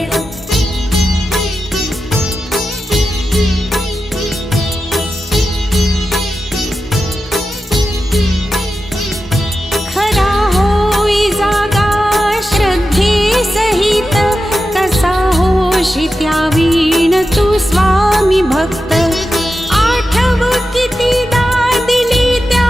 खरा होई जागा श्रद्धे सहित कसा होशी त्यावीण तू स्वामी भक्त आठव कितीदा दिली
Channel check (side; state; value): both; normal; correlation 0.91